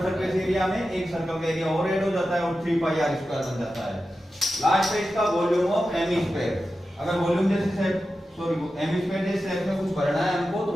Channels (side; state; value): both; normal; correlation 0.92